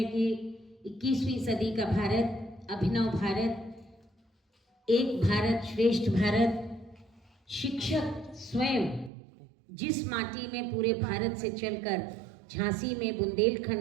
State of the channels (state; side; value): drops out; left; at 9.1 s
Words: कि 21वीं सदी का भारत, अभिनव भारत, एक भारत श्रेष्ठ भारत, शिक्षक स्वयं जिस माटी में पूरे भारत से चलकर झांसी में